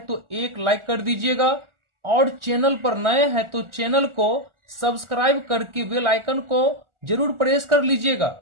तो एक लाइक कर दीजिएगा और चैनल पर नए हैं तो चैनल को सब्सक्राइब करके बेल आइकन को जरूर प्रेस कर लीजिएगा,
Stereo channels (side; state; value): left; late; 1.4 ms